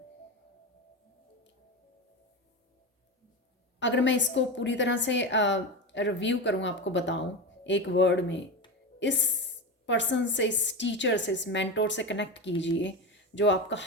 अगर मैं इसको पूरी तरह से रिव्यू करूँ, आपको बताऊँ एक वर्ड में, इस पर्सन से, इस टीचर से, इस मेंटोर से कनेक्ट कीजिए, जो आपका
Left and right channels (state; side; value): normal; both; correlation 0.20